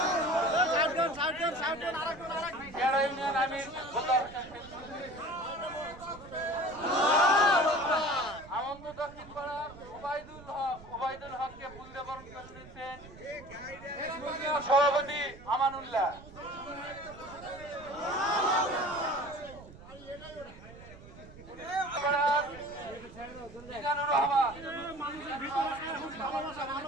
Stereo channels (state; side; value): noise; right; rumble, 18 dB below the sound